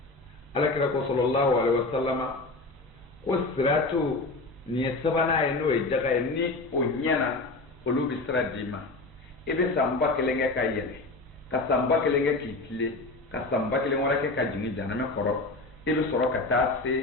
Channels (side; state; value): right; quieter; 3.2 dB